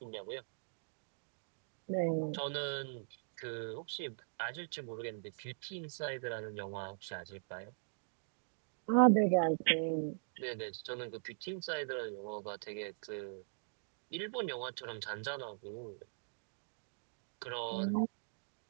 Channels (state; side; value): silent; left; digital silence